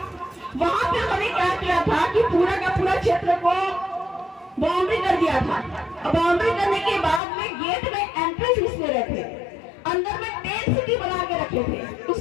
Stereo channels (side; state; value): right; drops out; at 7.2 s